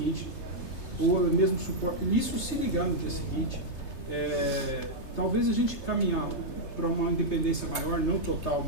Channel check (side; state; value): right; late; 3.3 ms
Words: ou o mesmo suporte, isso se ligar no dia seguinte. Talvez a gente caminhar uma independência maior, não total,